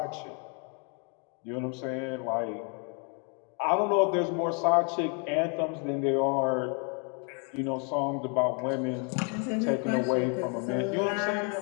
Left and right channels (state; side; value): quieter; right; 38.0 dB